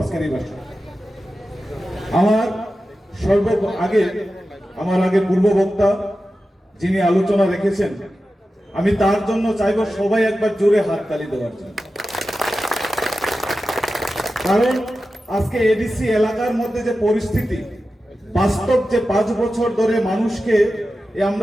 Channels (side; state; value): both; normal; correlation 0.93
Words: এই ভাষণ। আমার আগে পূর্ব বক্তা যিনি আলোচনা রেখেছেন, আমি তার জন্য চাইব সবাই একবার জোরে হাততালি দেওয়ার জন্য। কারণ আজকে এডিসি এলাকার মধ্যে যে পরিস্থিতি, বাস্তব যে 5 বছর ধরে মানুষকে,